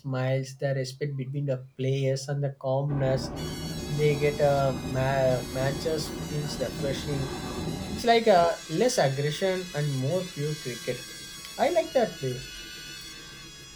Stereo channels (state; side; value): identical; both; correlation 1.00